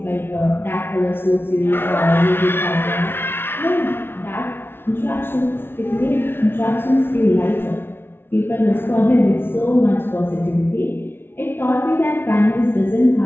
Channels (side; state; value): right; late; 0.11 ms